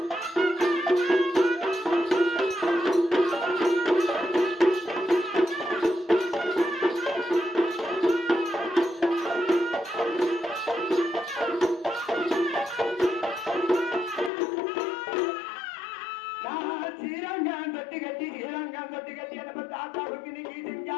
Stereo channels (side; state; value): right; drops out; at 14.3 s